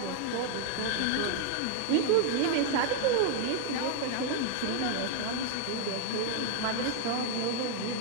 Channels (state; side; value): different; both; correlation 0.00